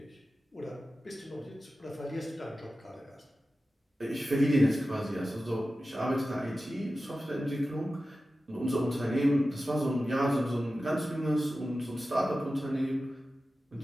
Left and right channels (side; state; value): both; normal; correlation 0.94